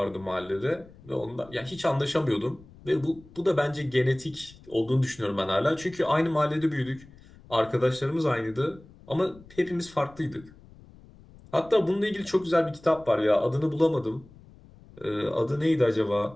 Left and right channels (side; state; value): left; noise; rumble, 23 dB below the sound